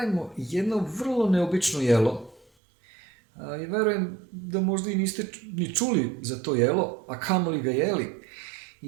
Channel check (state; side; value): drops out; left; at 2.5 s